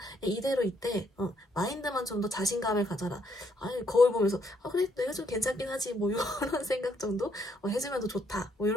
이대로 이때, 마인드만 좀 더 자신감을 가져라. 아니, 거울 보면서, 그래, 내가 좀 괜찮긴 하지. 뭐, 이런 생각 정도? 해주면 더 좋다. 뭐,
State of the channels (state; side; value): normal; both; correlation 0.72